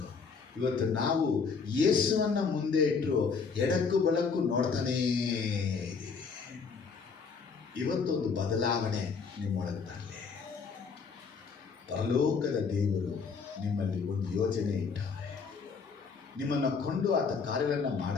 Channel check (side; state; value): right; quieter; 5.3 dB